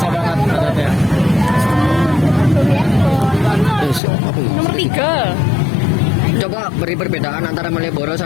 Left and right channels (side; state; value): right; drops out; at 4.0 s